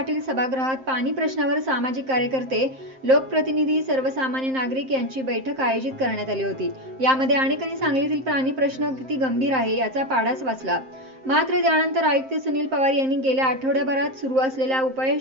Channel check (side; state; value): left; late; 7.6 ms